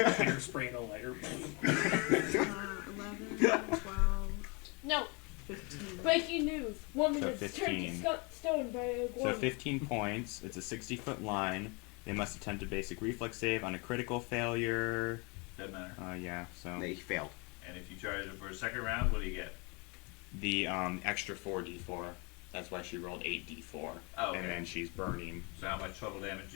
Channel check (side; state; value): right; quieter; 30.9 dB